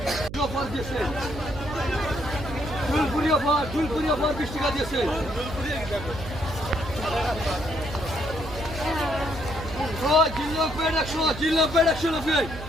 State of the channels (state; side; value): noise; right; hum, 11 dB below the sound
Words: অফার দিয়েছে ফুলপুরি অফার 20 টাকা দিয়েছে জিল্লো পেড 100 জিল্লো পেড 100 নব্বই